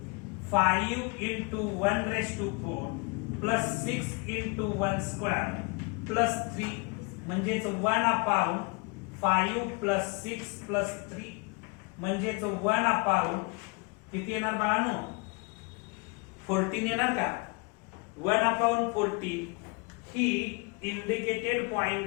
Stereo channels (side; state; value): right; quieter; 30.5 dB